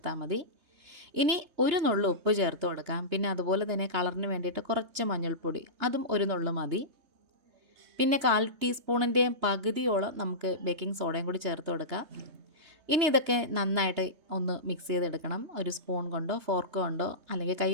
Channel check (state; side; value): late; left; 3.2 ms